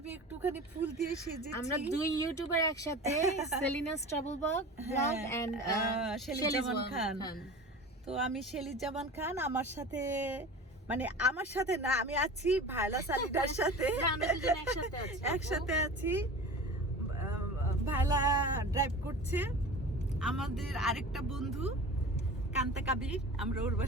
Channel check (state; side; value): normal; both; correlation 0.36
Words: একটুখানি ফুল দিয়ে সেজেছি। আমরা দুই ইউটিউবার একসাথে, Selina's travel blog and Shelley জামান খান। তো আমি শেলি জামান খান, আমার সাথে না, আমি আছি ভায়লা সালিদার সাথে। আমরা দুজন একসাথে আছি। ভায়লা ড্রাইভ করছে। আমাদের আরেকটা বন্ধু কান্তা কাবির, আমরা ওর